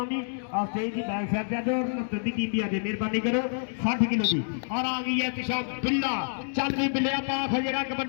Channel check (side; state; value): right; silent; digital silence